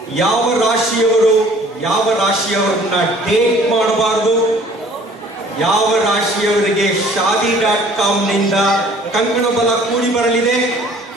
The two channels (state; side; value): normal; both; correlation 0.53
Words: ಯಾವ ರಾಶಿಯವರನ್ನ ಡೇಟ್ ಮಾಡಬಾರದು, ಯಾವ ರಾಶಿಯವರಿಗೆ shaadi.com ನಿಂದ ಕಂಕಣ ಬಲ ಕೂಡಿ ಬರಲಿದೆ,